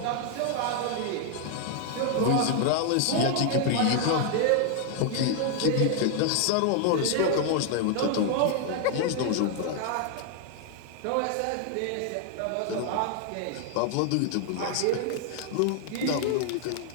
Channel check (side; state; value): both; different; correlation 0.00